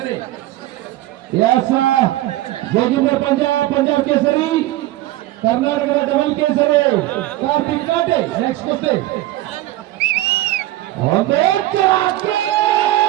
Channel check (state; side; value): quieter; left; 16.0 dB